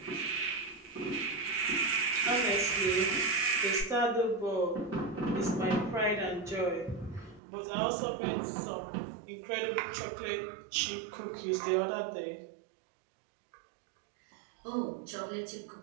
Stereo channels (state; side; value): drops out; left; at 7.4 s